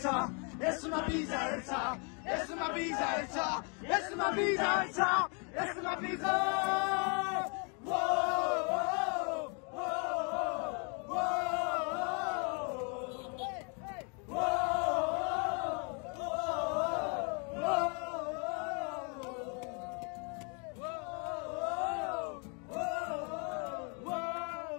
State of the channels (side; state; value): right; quieter; 36.2 dB